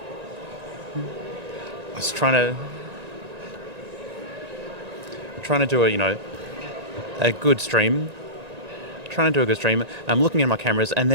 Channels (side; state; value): left; late; 1.8 ms